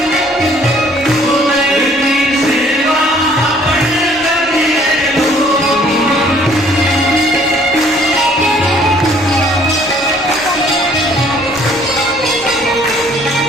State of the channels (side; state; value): both; normal; correlation 0.59